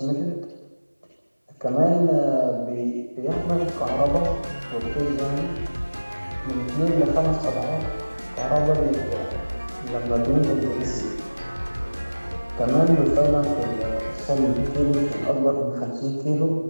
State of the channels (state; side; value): inverted; both; correlation -1.00